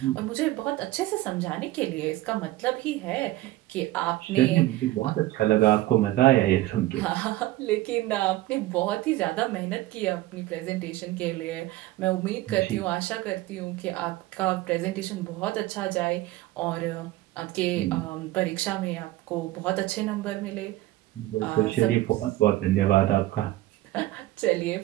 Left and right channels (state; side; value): quieter; left; 16.7 dB